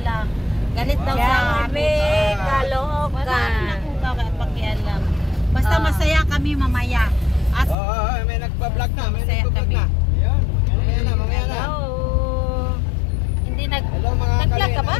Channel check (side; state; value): right; drops out; at 7.8 s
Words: Galit daw sa amin. Kaloka. Wala akong pakialam. Basta masaya kami mamaya. May nagpa-vlog na. May nagpa-vlog na. Mamaya na. Hindi Hello mga nag-vlog ka ba?